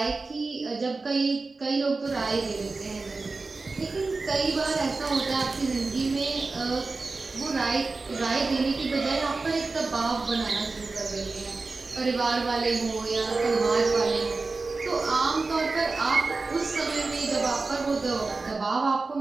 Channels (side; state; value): left; quieter; 3.8 dB